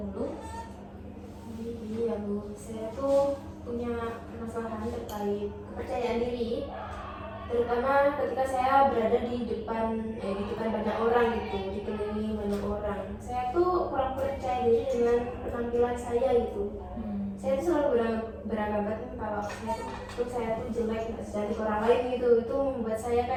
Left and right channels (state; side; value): identical; both; correlation 1.00